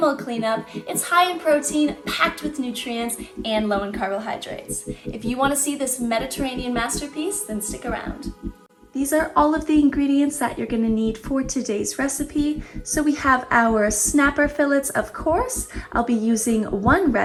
cleanup. It's high in protein, packed with nutrients, and low in carbohydrates. If you want to see this Mediterranean masterpiece, then stick around. These are all of the ingredients that you're going to need for today's recipe. So we have our snapper fillets, of course. I'll be using 1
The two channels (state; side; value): identical; both; correlation 1.00